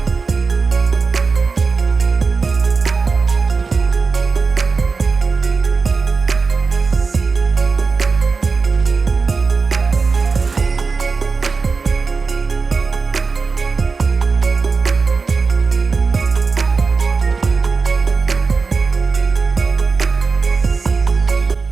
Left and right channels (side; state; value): left; quieter; 4.6 dB